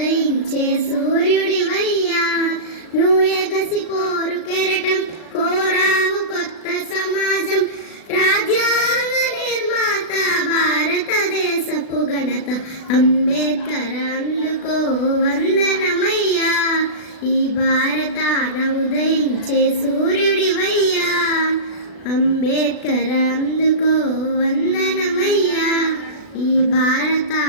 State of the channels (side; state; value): right; late; 36 ms